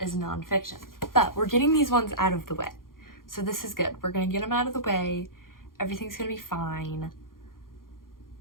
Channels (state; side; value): late; right; 0.91 ms